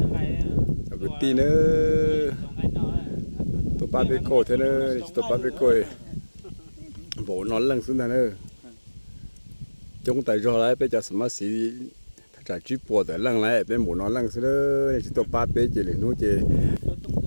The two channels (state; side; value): inverted; both; correlation -1.00